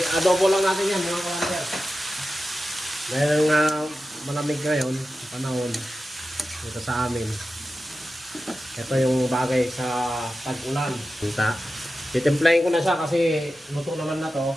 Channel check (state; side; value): normal; both; correlation 0.93